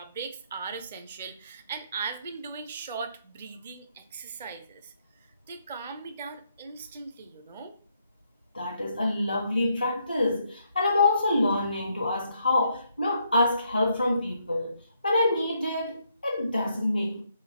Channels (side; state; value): both; inverted; correlation -0.74